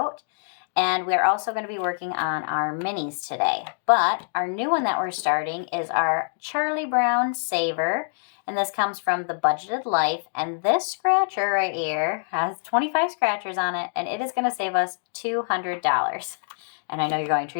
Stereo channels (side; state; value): right; silent; digital silence